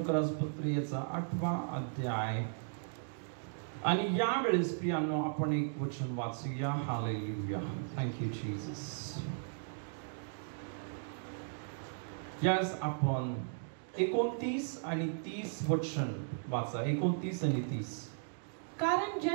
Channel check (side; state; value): left; silent; digital silence